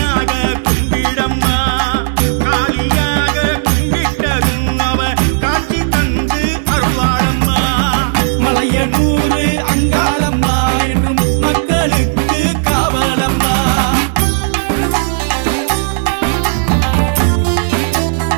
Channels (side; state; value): left; silent; digital silence